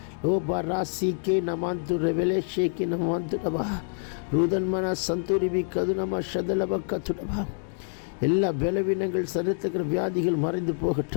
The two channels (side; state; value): right; silent; digital silence